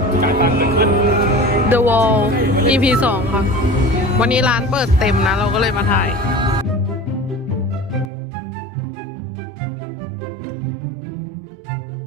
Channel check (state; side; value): drops out; left; at 8.1 s